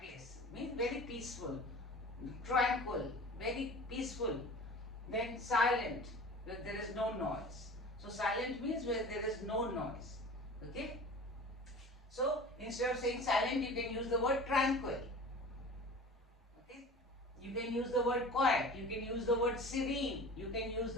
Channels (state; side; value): normal; both; correlation 0.38